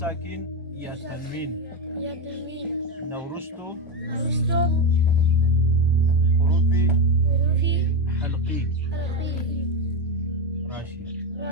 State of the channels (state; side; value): normal; both; correlation 0.11